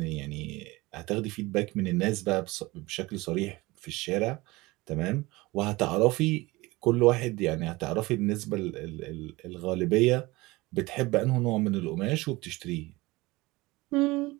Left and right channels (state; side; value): quieter; left; 21.6 dB